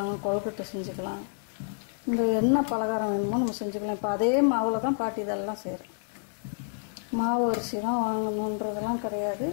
கொழுக்கட்டை செஞ்சுக்கலாம், இந்த என்ன பலகாரம் வேணுமோ நம்ம செஞ்சுக்கலாம். இப்போ அதே மாவில் தான் பாட்டி இதெல்லாம் செய்கிறேன். மாவு அரிசி தான் வாங்கணுன்றதெல்லாம் கிடையாது.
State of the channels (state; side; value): silent; right; digital silence